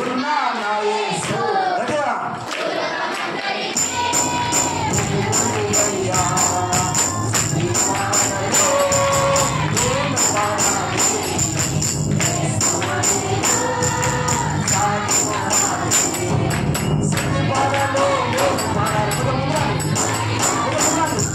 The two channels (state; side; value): identical; both; correlation 1.00